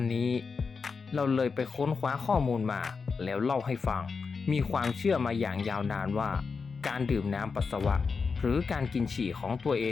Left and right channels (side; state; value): right; quieter; 5.1 dB